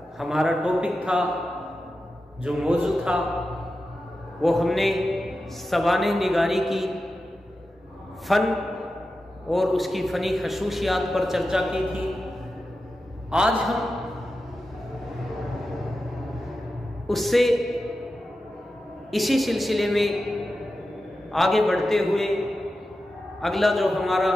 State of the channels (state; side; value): normal; both; correlation 0.92